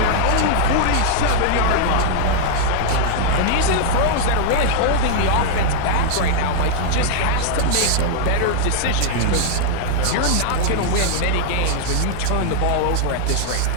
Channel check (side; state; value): both; different; correlation 0.00